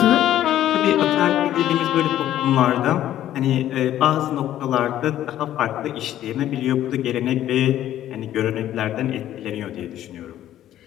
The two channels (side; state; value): right; quieter; 12.4 dB